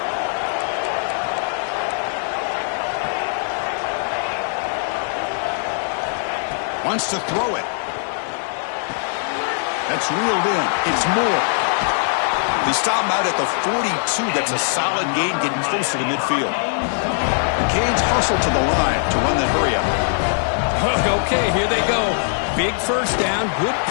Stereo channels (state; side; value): silent; right; digital silence